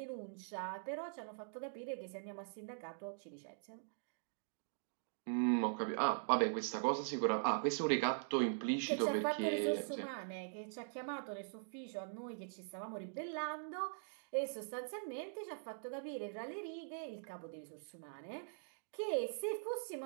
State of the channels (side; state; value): left; silent; digital silence